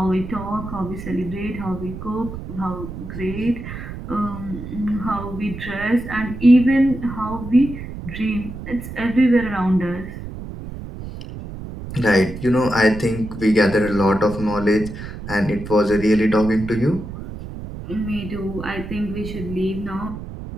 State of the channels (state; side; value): noise; right; rumble, 10 dB below the sound